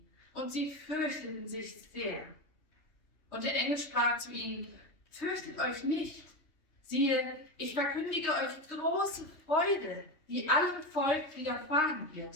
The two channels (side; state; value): right; late; 3.2 ms